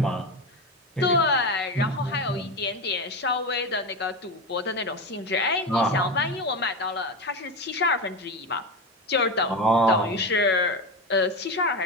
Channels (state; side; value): normal; both; correlation 0.18